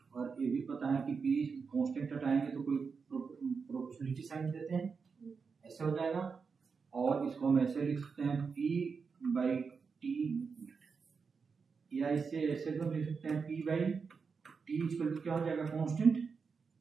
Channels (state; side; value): quieter; left; 5.3 dB